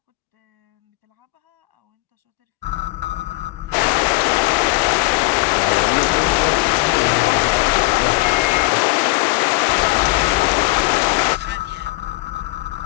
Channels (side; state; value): right; quieter; 23.2 dB